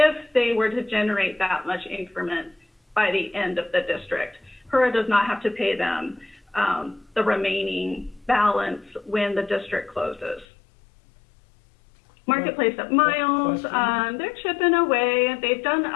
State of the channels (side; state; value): right; drops out; at 10.5 s